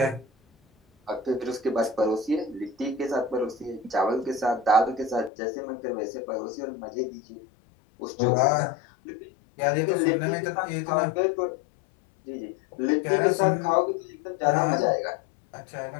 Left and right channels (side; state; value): right; drops out; at 5.3 s